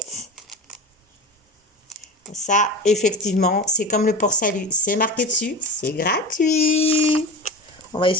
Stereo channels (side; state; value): both; normal; correlation 0.30